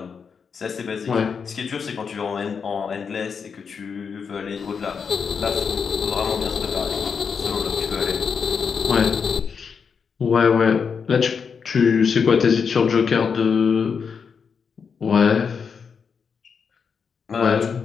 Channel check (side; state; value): right; quieter; 6.1 dB